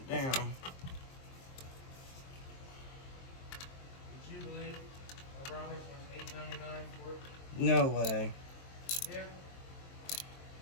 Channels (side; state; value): right; late; 23 ms